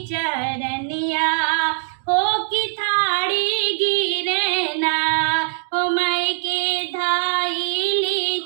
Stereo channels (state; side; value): silent; left; digital silence